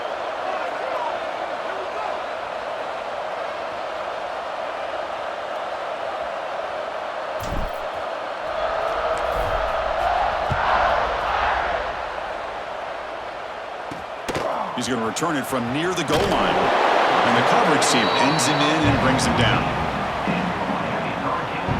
He's going to return it from near the goal line. And the coverage team pins him in and brings him down.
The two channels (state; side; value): identical; both; correlation 1.00